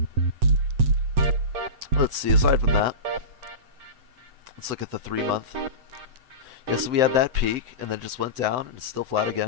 Let's see, aside from that, let's look at the 3-month. Yeah, so we had that peak, and then it just went down, and it's still flat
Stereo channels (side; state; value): left; late; 7.9 ms